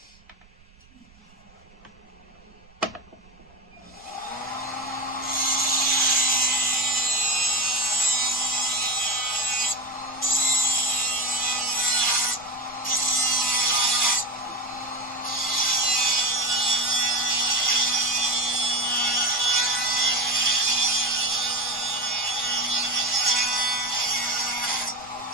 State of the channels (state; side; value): noise; right; rumble, 28 dB below the sound